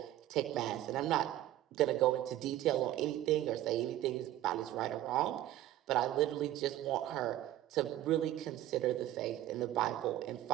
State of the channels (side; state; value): left; quieter; 13.8 dB